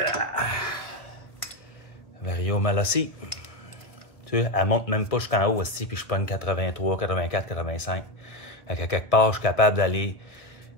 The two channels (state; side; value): late; right; 1.1 ms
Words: Vario Malossi. Tu sais, elle monte même pas jusqu'en haut aussi, puis je pogne 83, 84, 85. Fait qu'à quelque part, je suis capable d'aller